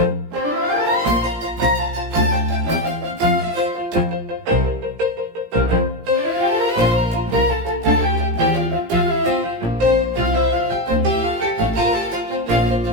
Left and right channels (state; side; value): late; left; 17 ms